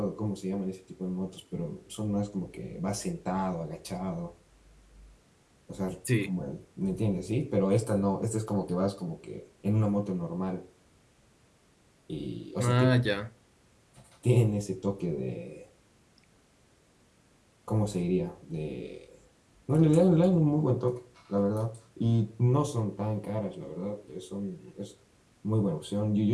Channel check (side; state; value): both; identical; correlation 1.00